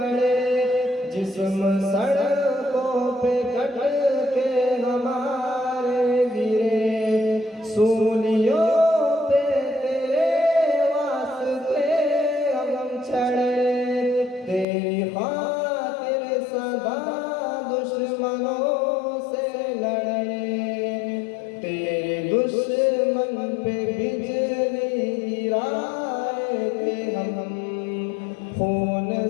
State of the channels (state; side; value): drops out; right; at 14.7 s